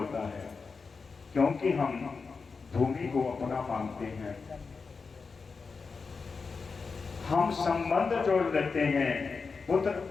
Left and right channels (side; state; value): right; quieter; 4.8 dB